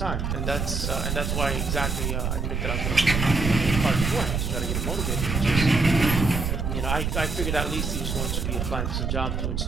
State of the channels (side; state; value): right; noise; rumble, 1 dB below the sound